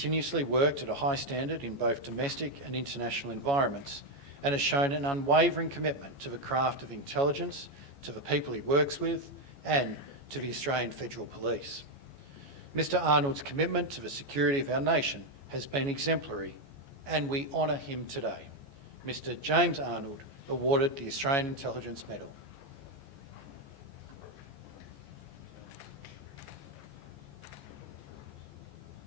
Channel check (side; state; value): left; late; 14 ms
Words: worked at a high standard in both domestic and international environments and has shown an unwavering commitment to the craft of intelligence, to the people he works with, and to the Australian Federal Police. Mr Arnold's commitment to the security of our nation has been exemplary, and we honour him today. Mr James Arnold, awarded the Australian Intelligence Medal.